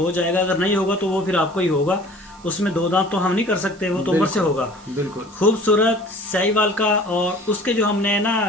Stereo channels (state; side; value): noise; right; hiss, 26 dB below the sound